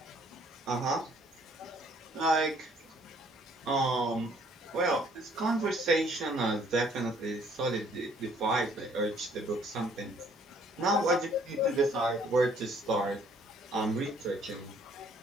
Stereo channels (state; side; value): normal; both; correlation 0.62